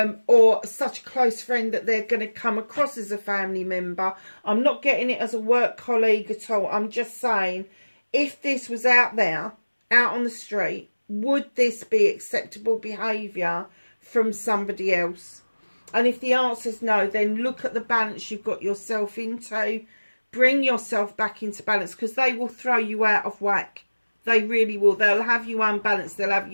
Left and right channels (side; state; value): both; inverted; correlation -1.00